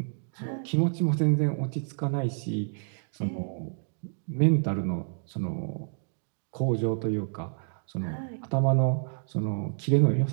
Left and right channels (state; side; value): silent; left; digital silence